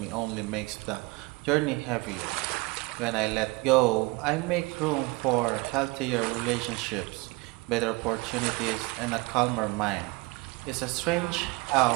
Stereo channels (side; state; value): left; quieter; 24.6 dB